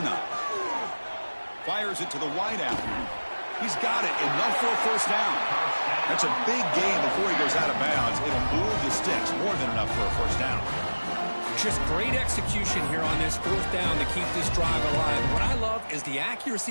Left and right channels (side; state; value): both; inverted; correlation -1.00